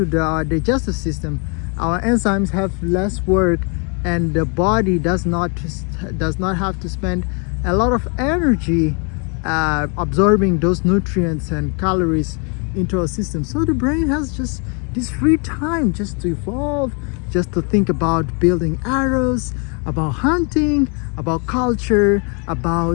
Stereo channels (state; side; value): quieter; right; 35.8 dB